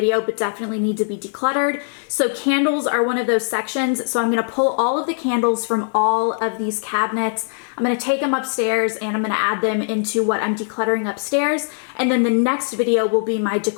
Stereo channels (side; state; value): right; silent; 64 dB below the other